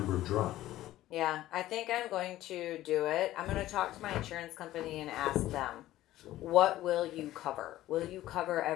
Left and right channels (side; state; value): right; quieter; 14.9 dB